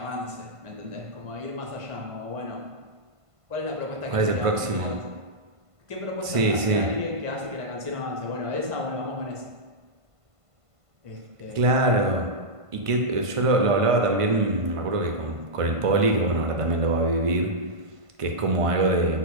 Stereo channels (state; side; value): late; left; 1.5 ms